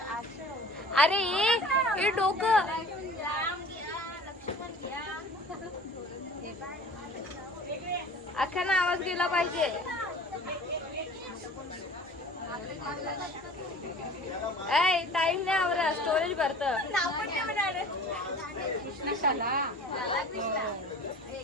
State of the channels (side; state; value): both; normal; correlation 0.44